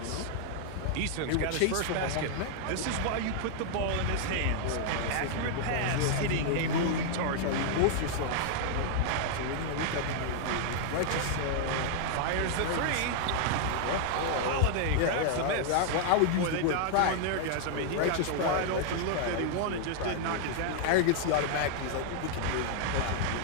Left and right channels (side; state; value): both; different; correlation 0.00